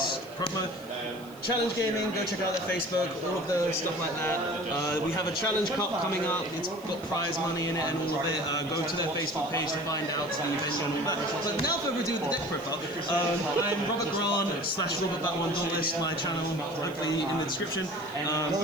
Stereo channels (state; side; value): noise; left; hiss, 23 dB below the sound